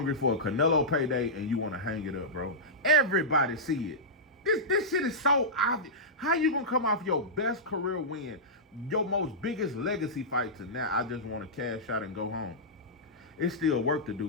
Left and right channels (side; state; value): both; normal; correlation -0.13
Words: for a Canelo payday and you want to hang it up, bro. Everybody see it. This shit is so obvious. How you gonna come off your best career win, your most biggest legacy fight to now, I just want to cash out and go home? It's still work to